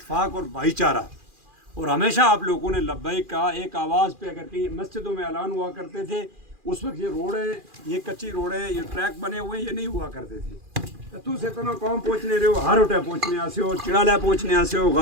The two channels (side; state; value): left; late; 2.4 ms